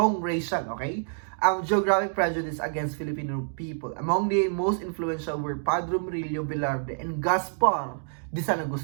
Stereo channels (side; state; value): left; silent; digital silence